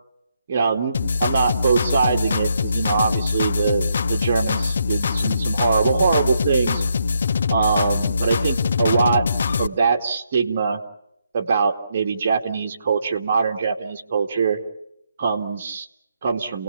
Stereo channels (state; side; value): inverted; both; correlation -0.78